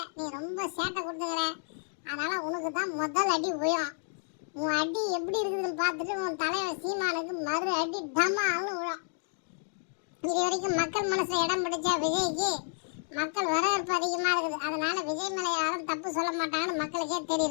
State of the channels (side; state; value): right; silent; digital silence